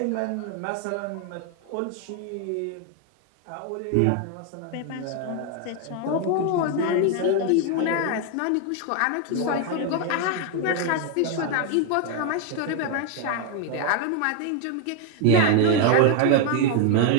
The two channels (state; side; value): different; both; correlation 0.01